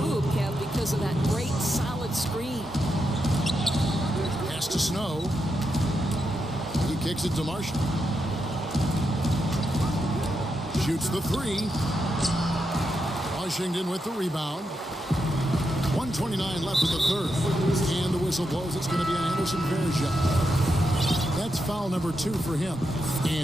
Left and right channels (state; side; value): normal; both; correlation 0.84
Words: hoop, Kev, because of that great solid screen. Pass to Snow. He kicks it to Marshall. Shoots the 3. Washington with the rebound. 1:29 left in the third. And the whistle blows. It's going to be on Anderson Varejau. That's foul number 2 for him.